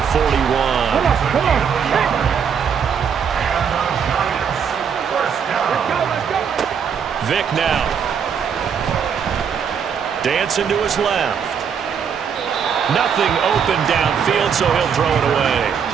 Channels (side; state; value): left; quieter; 7.2 dB